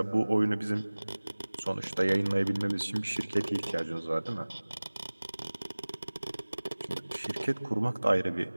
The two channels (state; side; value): inverted; both; correlation -1.00